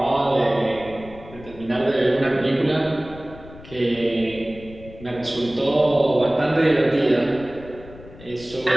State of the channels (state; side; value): noise; left; rumble, 18 dB below the sound